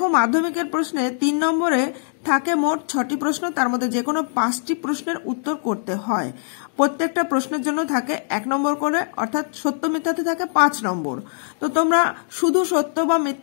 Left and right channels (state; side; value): silent; right; digital silence